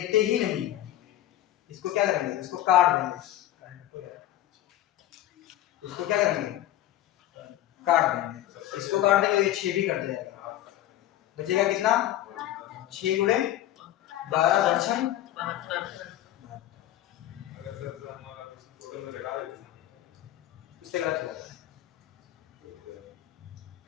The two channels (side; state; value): right; quieter; 13.6 dB